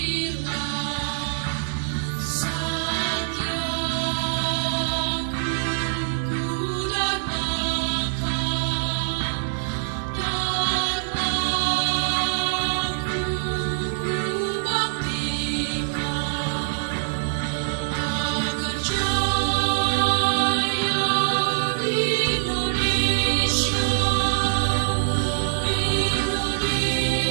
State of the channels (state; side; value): silent; left; digital silence